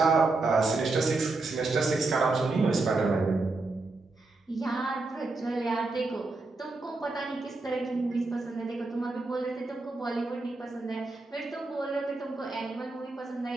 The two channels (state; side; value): quieter; left; 3.4 dB